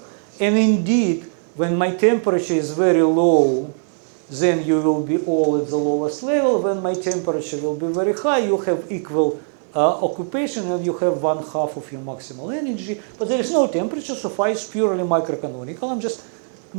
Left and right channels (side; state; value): left; silent; 65 dB below the other